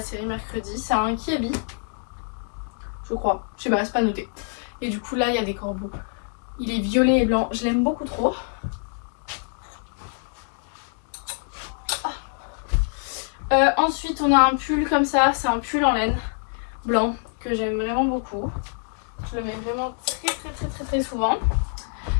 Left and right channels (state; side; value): silent; right; 59 dB below the other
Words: série mercredi. C'est un Kiabi. Je crois. Je sais pas, c'est pas noté. Et du coup, là, il y a des corbeaux. Il est violet et blanc. Je l'aime beaucoup trop. Ensuite, on a un pull comme ça. C'est un pull en laine blanc que j'aime vraiment beaucoup. Je le mets vraiment très souvent.